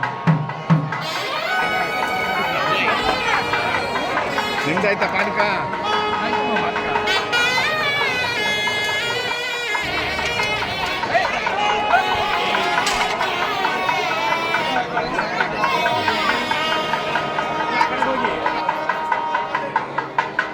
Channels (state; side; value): identical; both; correlation 1.00